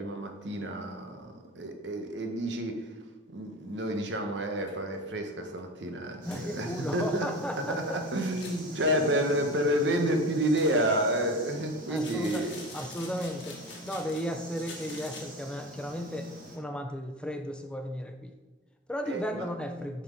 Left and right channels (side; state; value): both; normal; correlation 0.31